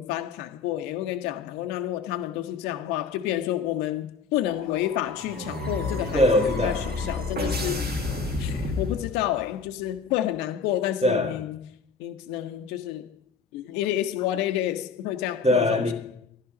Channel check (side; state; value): right; quieter; 5.2 dB